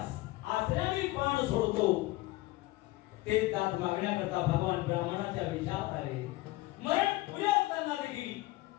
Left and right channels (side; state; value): right; quieter; 19.4 dB